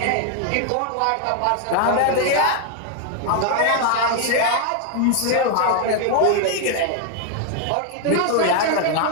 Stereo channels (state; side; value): different; both; correlation 0.00